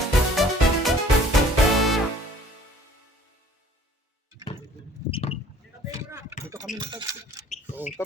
Dito kami na taxi. Oh,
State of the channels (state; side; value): normal; both; correlation 0.53